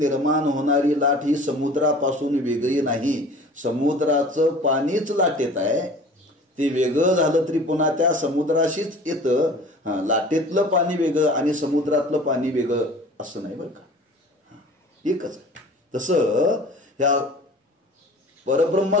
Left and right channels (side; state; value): both; normal; correlation 0.45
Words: होणारी लाट ही समुद्रापासून वेगळी नाही. समुद्राचं पाणीच लाटेत आहे. ते वेगळं झालं तरी पुन्हा त्या समुद्राशीच येतं. लाटेतलं पाणी वेगळं आणि समुद्रातलं पाणी वेगळं असं नाही बरं का. एकच आहे. तसं ह्या परब्रह्म